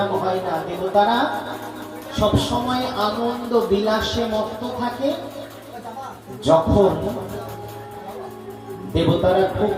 হয় না। দেবতারা সবসময় আনন্দ বিলাসে মত্ত থাকে। যখন দেবতারা খুব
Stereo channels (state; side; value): identical; both; correlation 1.00